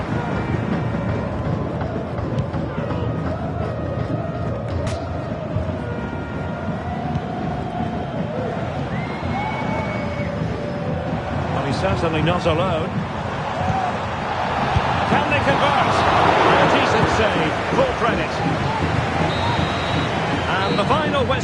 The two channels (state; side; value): identical; both; correlation 1.00